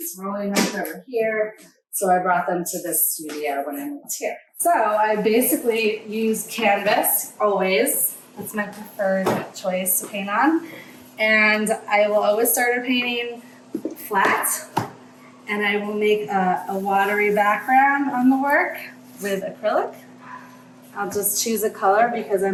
rolling up over here. So I brought them to this studio when I moved here. So I basically use canvas always. That's my preferred choice to paint on. And I will always start a painting flat. And I will make a watery background on the work with acrylic. I'll just choose a color because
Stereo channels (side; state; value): both; identical; correlation 1.00